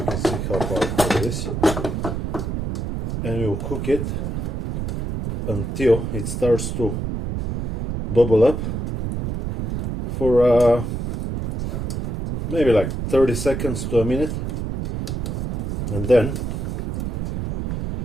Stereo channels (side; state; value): right; noise; rumble, 3 dB below the sound